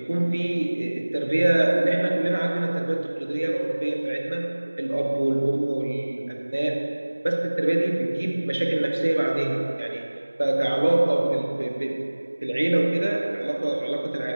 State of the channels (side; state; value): both; inverted; correlation -1.00